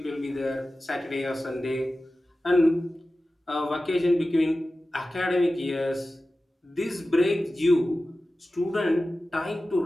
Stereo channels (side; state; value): both; normal; correlation 0.95